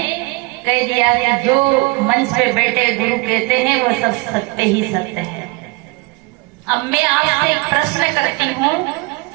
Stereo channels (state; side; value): quieter; left; 26.1 dB